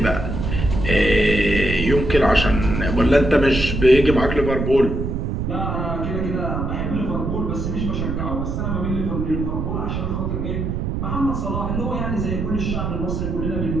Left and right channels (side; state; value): right; noise; rumble, 2 dB below the sound